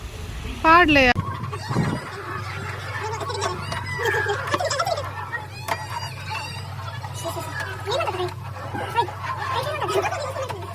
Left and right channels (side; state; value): both; identical; correlation 1.00